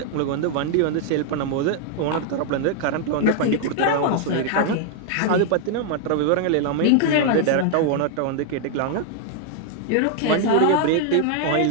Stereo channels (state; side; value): different; both; correlation 0.00